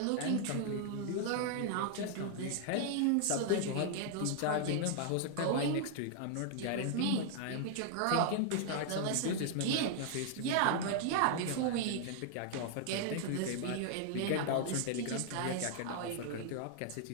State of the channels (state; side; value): different; both; correlation -0.01